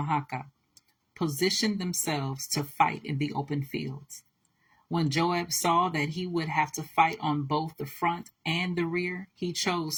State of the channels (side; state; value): both; identical; correlation 1.00